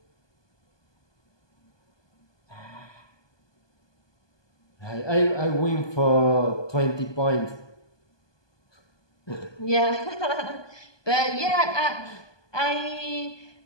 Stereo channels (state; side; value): late; right; 1.2 ms